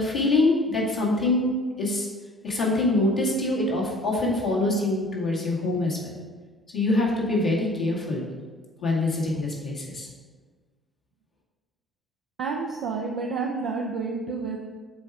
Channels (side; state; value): both; normal; correlation 0.50